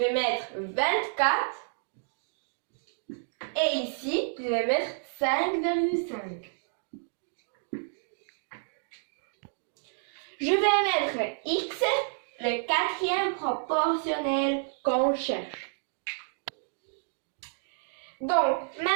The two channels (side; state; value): left; silent; digital silence